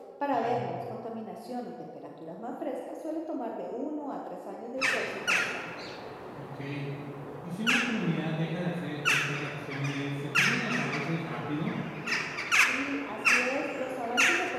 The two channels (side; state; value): both; identical; correlation 1.00